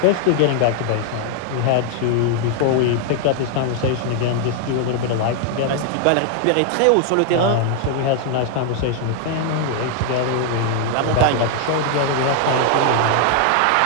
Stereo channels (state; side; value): different; both; correlation 0.00